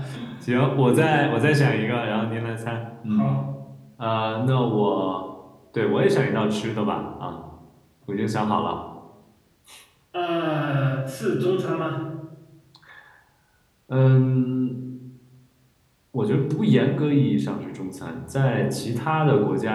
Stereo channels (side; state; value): both; identical; correlation 1.00